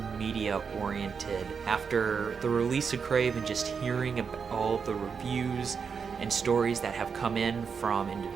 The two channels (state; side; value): quieter; left; 6.0 dB